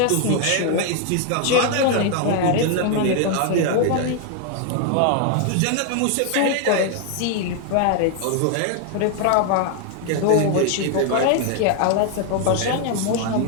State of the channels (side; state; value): both; different; correlation 0.00